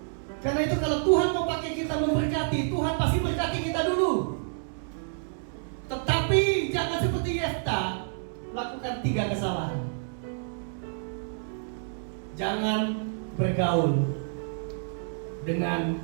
Karena itu kalau Tuhan mau pakai kita memberkati, Tuhan pasti berkati kita dulu. Tetapi jangan seperti Yefta, lakukan 3 kesalahan. Jangan bergaul dengan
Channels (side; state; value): left; silent; digital silence